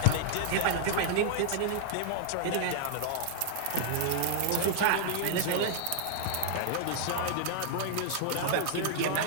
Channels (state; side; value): different; both; correlation -0.01